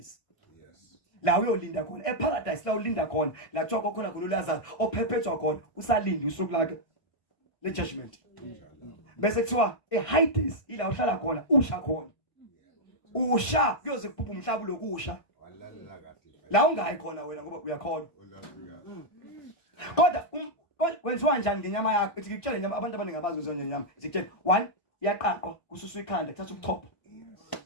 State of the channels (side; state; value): right; late; 1.5 ms